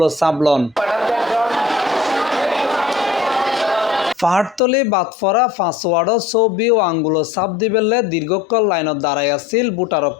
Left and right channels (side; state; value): right; drops out; at 4.6 s